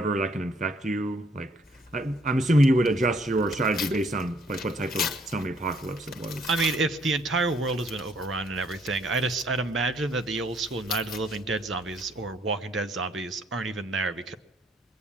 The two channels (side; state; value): both; normal; correlation 0.65